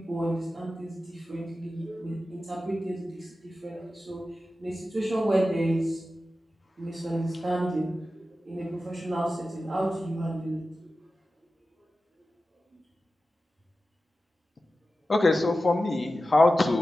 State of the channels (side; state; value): both; normal; correlation 0.94